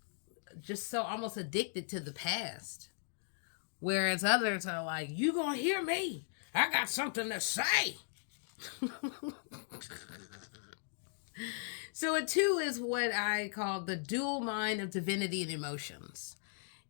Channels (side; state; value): right; silent; digital silence